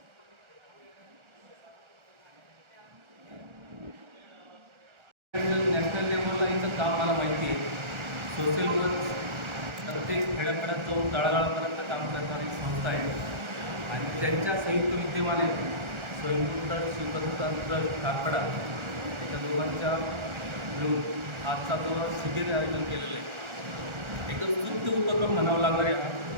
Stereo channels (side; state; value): left; late; 1.4 ms